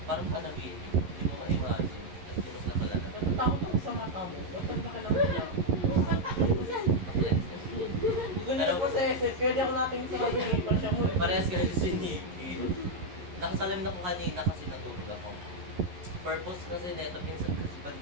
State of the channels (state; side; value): late; left; 11 ms